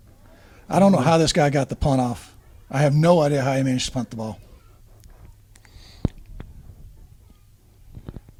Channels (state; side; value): identical; both; correlation 1.00